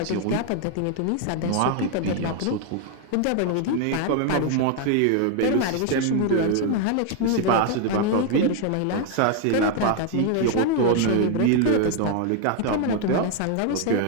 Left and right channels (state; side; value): different; both; correlation 0.00